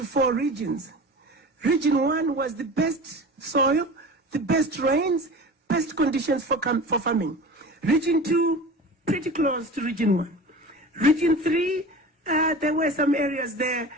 4 regions. Region 1 was the best soil, the best rains, best conditions for farming. Region 2, pretty close to Region 1. Region 3, there were some areas there,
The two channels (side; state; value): both; normal; correlation 0.35